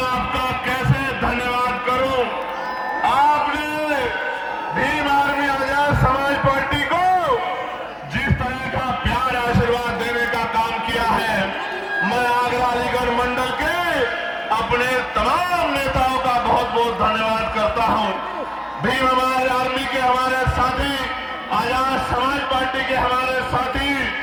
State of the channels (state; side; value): identical; both; correlation 1.00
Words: आपका कैसे धन्यवाद करूं। आपने भीम आर्मी आजाद समाज पार्टी को जिस तरह का प्यार आशीर्वाद देने का काम किया है, मैं आगरा अलीगढ़ मंडल के अपने तमाम नेताओं का बहुत बहुत धन्यवाद करता हूं। भीम हमारे आर्मी के हमारे साथी, आजाद समाज पार्टी के हमारे साथी,